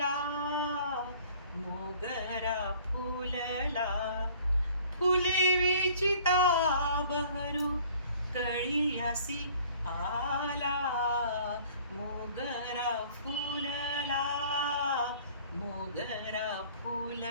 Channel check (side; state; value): both; inverted; correlation -0.52